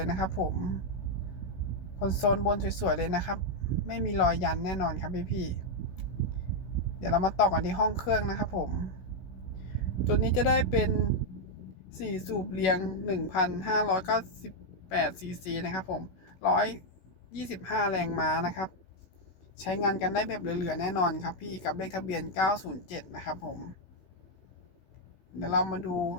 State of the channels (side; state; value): right; late; 16 ms